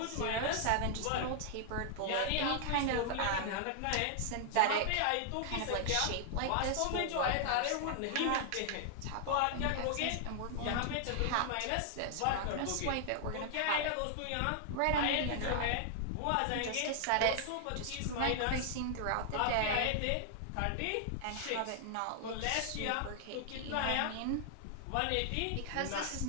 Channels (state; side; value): different; both; correlation 0.00